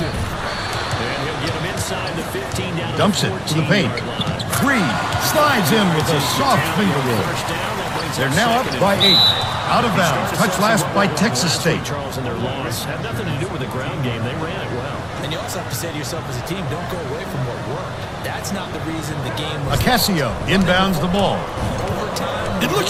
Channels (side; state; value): both; identical; correlation 1.00